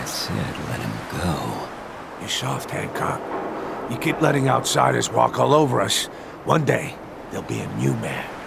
said let him go. You're soft, Hancock. You keep letting outsiders walk all over us. One day, there'll be a new mayor.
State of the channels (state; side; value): identical; both; correlation 1.00